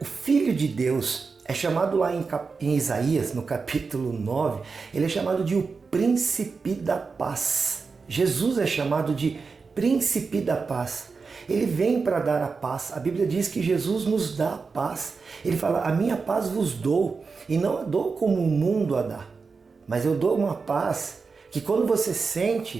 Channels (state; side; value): quieter; left; 4.8 dB